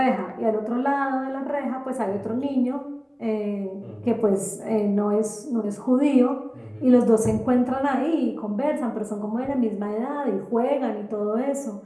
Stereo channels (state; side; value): identical; both; correlation 1.00